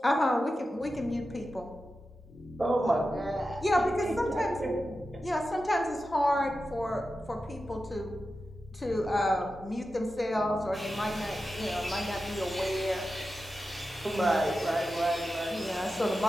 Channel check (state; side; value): normal; both; correlation 0.92